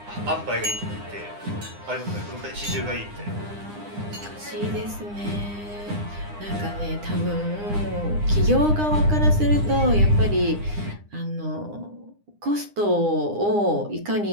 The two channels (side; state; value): left; late; 9.8 ms